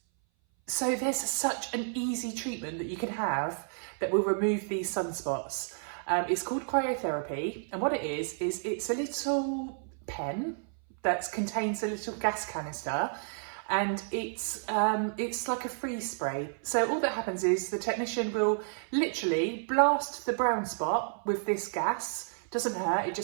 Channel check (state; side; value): silent; left; 57 dB below the other